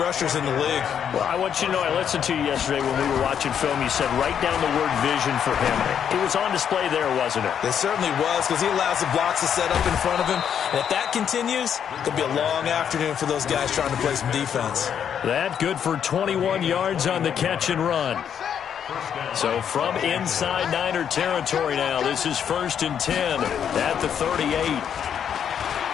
in the league. Well, I want you to know, I listened to you yesterday when we were watching film. You said write down the word vision for him. It was on display there, wasn't it? It certainly was, because he allows the blocks to set up in front of him. And if that continues, it'll be a long afternoon for those guys trying to play some defense. That good for 21 yards on the catch and run. So from inside Niner territory now, this is 1st and 10 at the 38.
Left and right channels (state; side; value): quieter; right; 8.4 dB